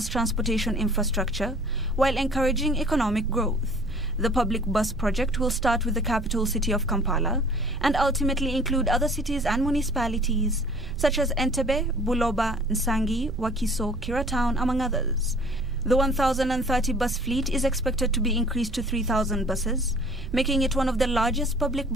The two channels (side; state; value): right; noise; rumble, 8 dB below the sound